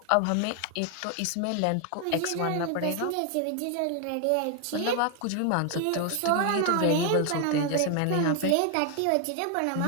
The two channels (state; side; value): different; both; correlation 0.00